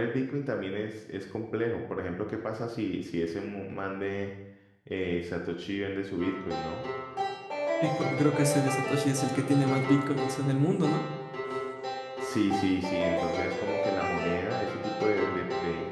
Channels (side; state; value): both; identical; correlation 1.00